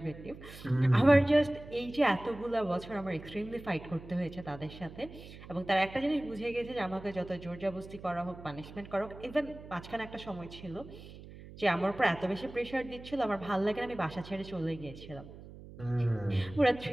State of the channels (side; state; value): right; noise; hum, 16 dB below the sound